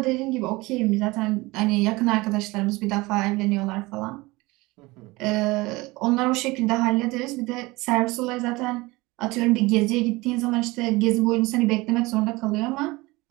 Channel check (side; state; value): left; quieter; 22.0 dB